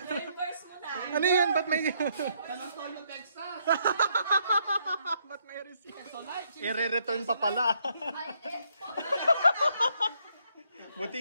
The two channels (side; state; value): both; inverted; correlation -0.72